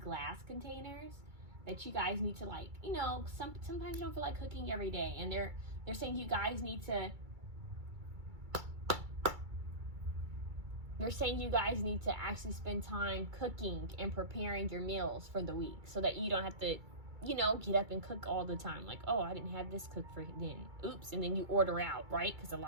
containers that you guys need to, like, you know, sometimes you don't feel like cooking every day, and they're saying you guys need to. They're saying you guys need to actually spend time cooking and preparing your meals for the week so that you don't have to, you know, get up and cook all the time. Like, oh, I didn't have this cooked for then. Oops. And then you order out, right? Because a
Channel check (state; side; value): late; left; 2.3 ms